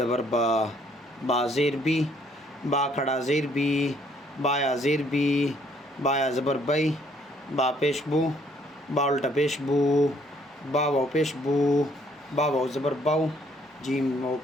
با، با زیر بی، با کھڑا زیر بی، بایا زیر بی، بایا زبر بئی، با پیش بو، با الٹا پیش بو، با واو پیش بو، با واو زبر باو، جیم واو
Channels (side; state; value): both; normal; correlation 0.65